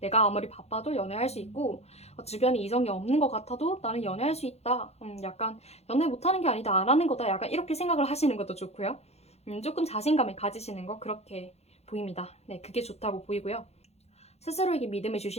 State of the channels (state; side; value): late; right; 0.31 ms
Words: 내가 아무리 바빠도 연애할 수 있고 주변에 이성이 없는 것 같아도 나는 연애할 수 있다. 약간 연애 못하는 게 아니다. 안 하는 거다. 약간 이렇게 생각을 하시는 것도 좋고요. 조금 자신감을 가지시는 거 그렇게 보입니다. 네, 그게 좋다고 보이고요. 스스로에게 믿음을